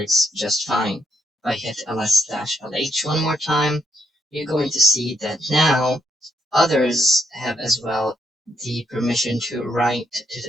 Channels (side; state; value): both; normal; correlation 0.77